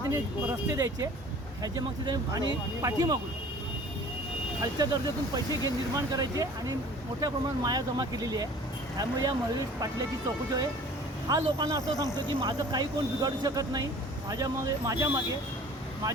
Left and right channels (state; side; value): normal; both; correlation 0.47